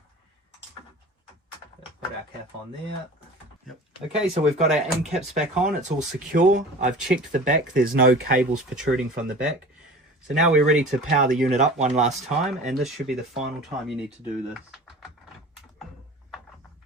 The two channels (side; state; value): both; normal; correlation 0.39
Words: Put our cap on there. Yep. Okay, so we've got our end caps back on. It's all secure. I've checked the back. There's no cables protruding from the back. So now we're ready to power the unit up one last time, and this should be the final time you need to do this.